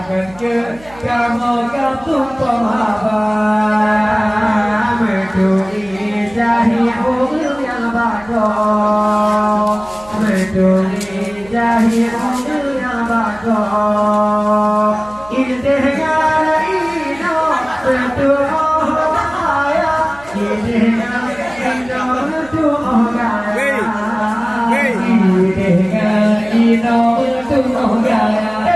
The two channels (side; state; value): right; noise; hum, 22 dB below the sound